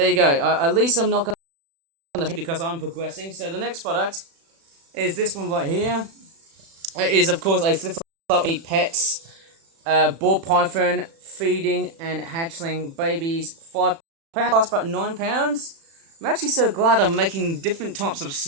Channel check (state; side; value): late; left; 36 ms